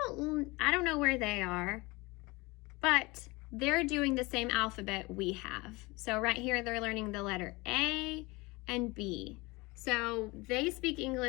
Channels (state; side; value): quieter; right; 23.9 dB